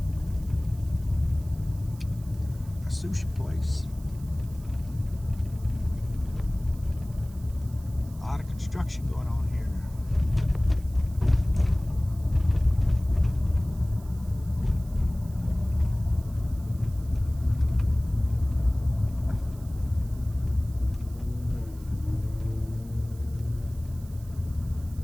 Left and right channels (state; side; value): noise; right; hiss, 24 dB below the sound